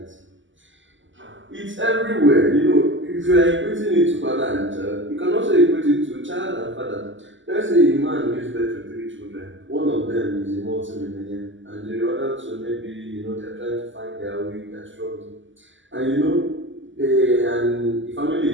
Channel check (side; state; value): left; late; 0.55 ms